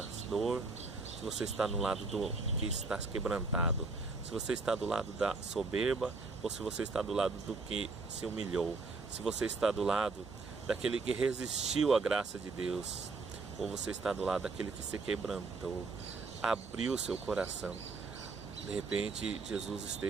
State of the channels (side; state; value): left; quieter; 4.0 dB